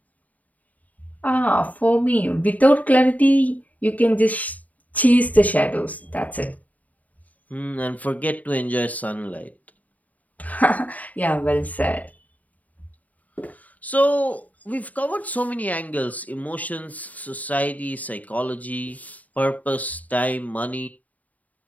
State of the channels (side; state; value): right; late; 0.073 ms